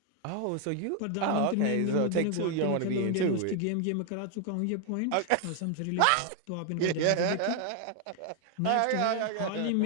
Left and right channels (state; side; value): different; both; correlation 0.00